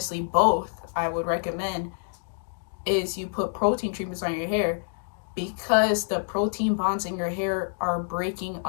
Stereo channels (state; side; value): silent; right; digital silence